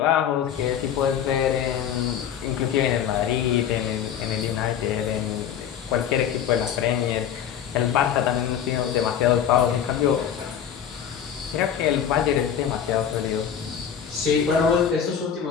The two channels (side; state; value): right; quieter; 8.7 dB